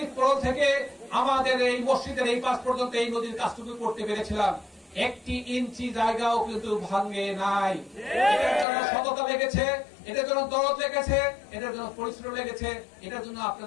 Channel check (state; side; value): drops out; right; at 8.7 s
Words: থেকে আমাদের এই মসজিদের এই পাশ পর্যন্ত এই নদীর কাজটুকু করতে পেরেছিলাম। 1 ইঞ্চি জায়গাও কিন্তু ভাঙে নাই। এটার জন্য সততা লেগেছে, এটার জন্য দরদ লেগেছে, এটার জন্য পরিশ্রম লেগেছে, এটার জন্য